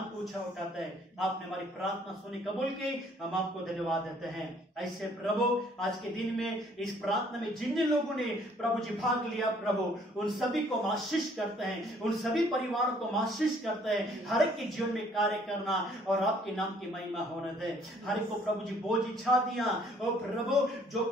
को ऊंचा उठाते हैं। आपने हमारी प्रार्थना सुनी, कबूल की, हम आपको धन्यवाद देते हैं। ऐसे प्रभु आज के दिन में इस प्रार्थना में जिन जिन लोगों ने प्रभु जी भाग लिया प्रभु, उन सभी को आशीष करते हैं, उन सभी परिवारों को आशीष करते हैं। हर एक के जीवन में कार्य करना और आपके नाम की महिमा होने दे। हर एक को प्रभु जी बोझ इच्छा दिया, और प्रभु जो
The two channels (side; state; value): both; normal; correlation 0.61